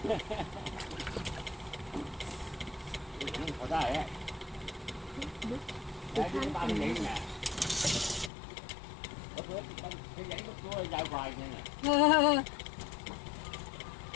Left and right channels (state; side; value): drops out; right; at 8.3 s